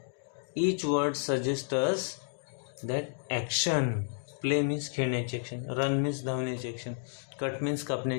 Each word suggests us that action. Play means खेळण्याची action, run means धावण्याची action, cut means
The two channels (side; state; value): right; silent; 57 dB below the other